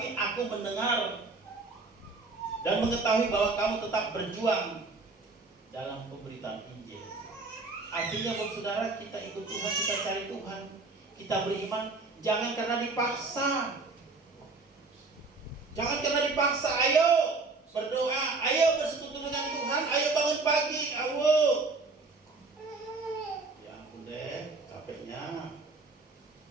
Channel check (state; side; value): quieter; left; 3.8 dB